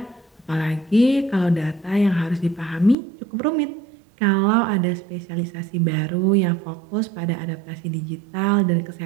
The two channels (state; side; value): drops out; left; at 3.0 s